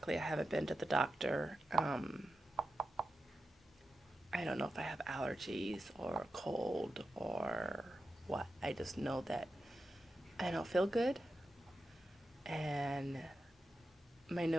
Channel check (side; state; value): both; normal; correlation 0.90